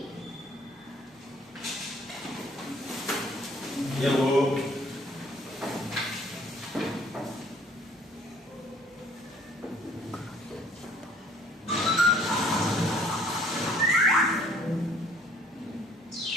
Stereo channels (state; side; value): normal; both; correlation 0.58